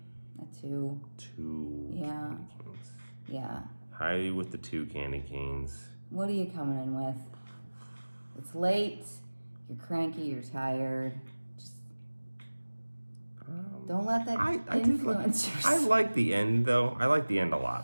2. 2 yeah. candy canes. Yeah. High with the 2 candy canes. What are you coming in with? It's late. You're cranky. You're tired. Just don't let that influence your... I like the end, though. I like the end a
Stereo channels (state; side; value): inverted; both; correlation -1.00